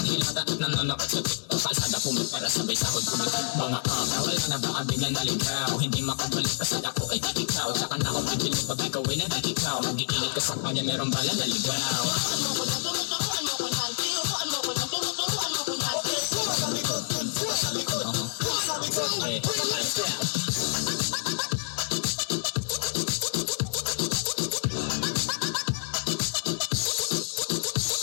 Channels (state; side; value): silent; right; digital silence